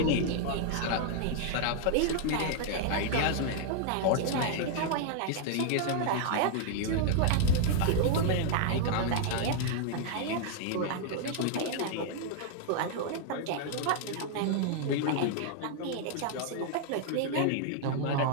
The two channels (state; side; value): different; both; correlation 0.00